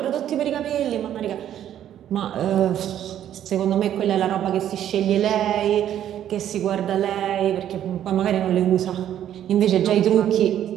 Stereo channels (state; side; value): quieter; left; 10.9 dB